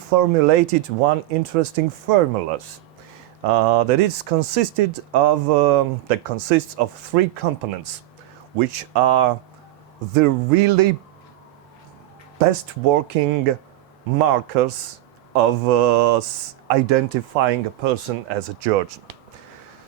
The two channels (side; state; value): left; quieter; 15.2 dB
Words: one interesting formula that consists of three components, which are the really best working markers of identifying a person as a Georgian.